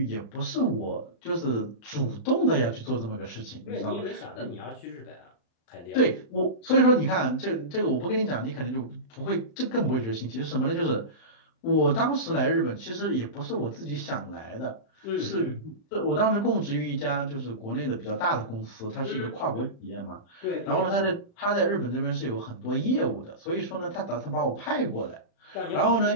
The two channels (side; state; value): right; late; 35 ms